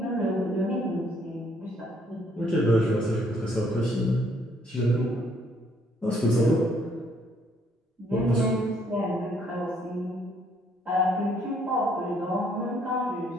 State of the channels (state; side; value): normal; both; correlation 0.67